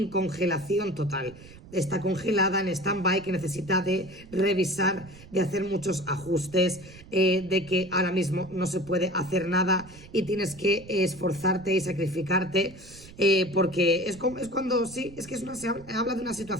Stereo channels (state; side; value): noise; right; rumble, 19 dB below the sound